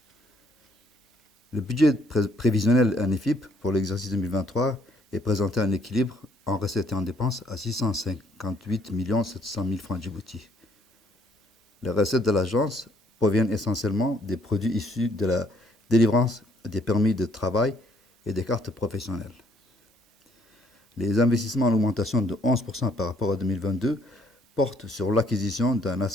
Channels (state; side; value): normal; both; correlation 0.67